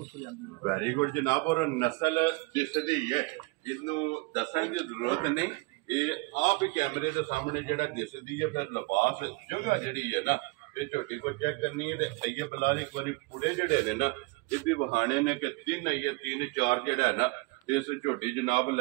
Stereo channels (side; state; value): left; quieter; 25.8 dB